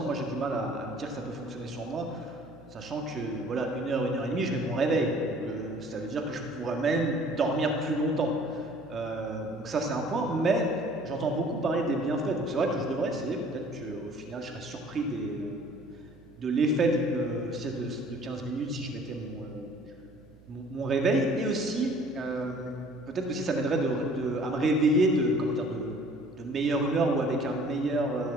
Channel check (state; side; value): noise; right; hum, 24 dB below the sound